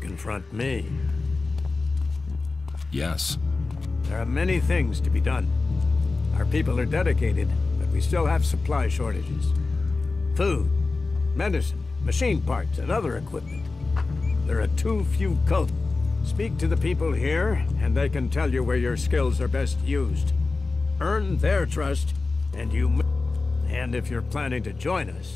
me. Yes. There are many things to be done. Our people are dedicated, but we still have supply shortages. Food, medicine, machine parts, and other equipment. There are too few cults. Speak to the people here, and they can tell you where your skills are best used. Earn their trust, and you... And if you're planning to join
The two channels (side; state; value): right; quieter; 3.7 dB